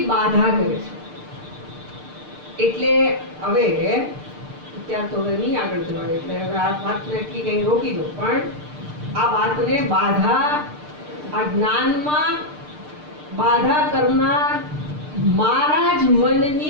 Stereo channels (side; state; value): left; late; 6.7 ms